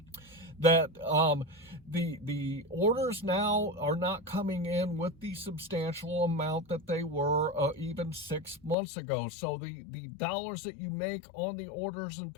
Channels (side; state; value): right; drops out; at 8.8 s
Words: that the orders now are not coming in with the substantial amount that they were even 6 months ago. So the dollars that you make on the orders and